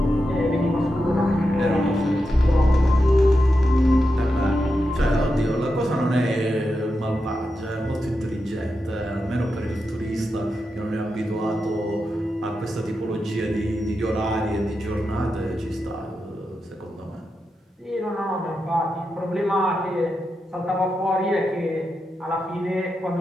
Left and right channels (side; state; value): both; normal; correlation 0.88